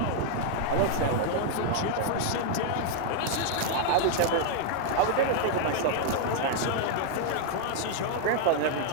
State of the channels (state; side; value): different; both; correlation -0.01